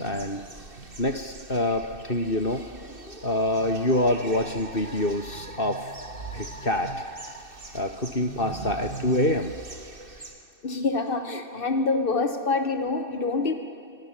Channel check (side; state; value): right; late; 2.6 ms